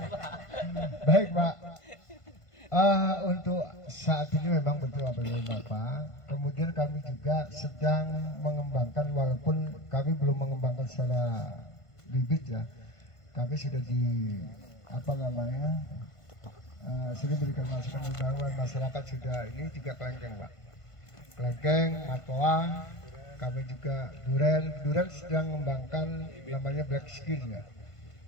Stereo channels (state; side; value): late; right; 1.5 ms